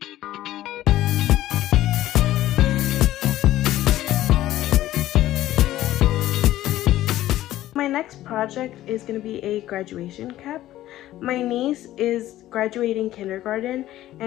My next project is going to be a graduation cap. My niece is graduating kindergarten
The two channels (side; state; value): right; quieter; 14.4 dB